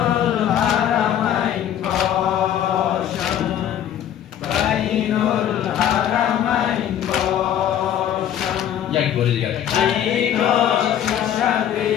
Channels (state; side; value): quieter; right; 10.3 dB